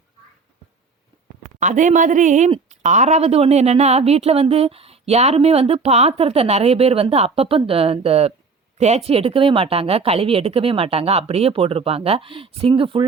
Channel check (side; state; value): left; quieter; 4.6 dB